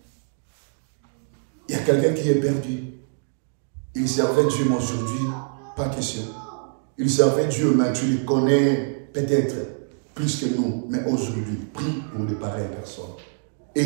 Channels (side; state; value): left; silent; digital silence